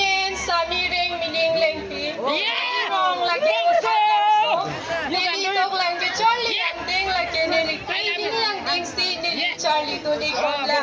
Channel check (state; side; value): identical; both; correlation 1.00